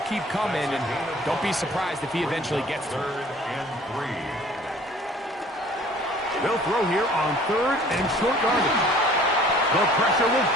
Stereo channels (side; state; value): both; normal; correlation 0.51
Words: keep coming, and don't be surprised if he eventually gets to it. Third and 3. They'll throw here on third and short yardage. The pressure will